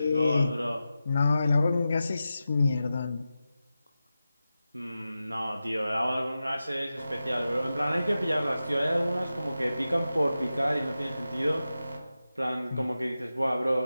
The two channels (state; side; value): inverted; both; correlation -0.93